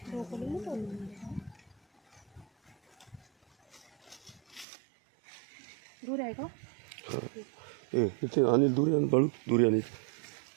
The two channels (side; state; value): left; drops out; at 4.7 s